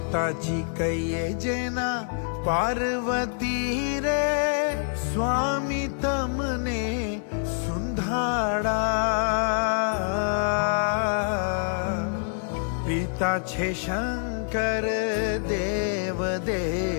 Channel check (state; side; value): silent; right; digital silence